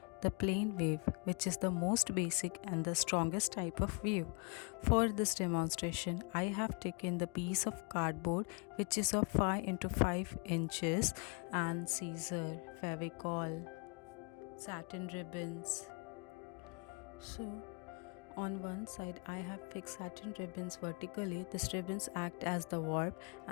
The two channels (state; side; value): quieter; right; 35.2 dB